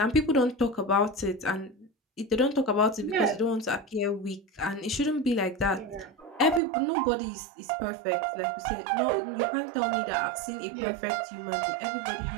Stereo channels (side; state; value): left; drops out; at 6.6 s